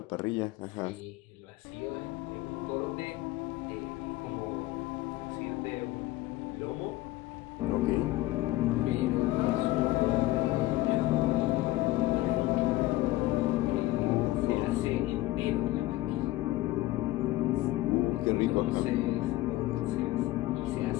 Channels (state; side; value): quieter; right; 17.3 dB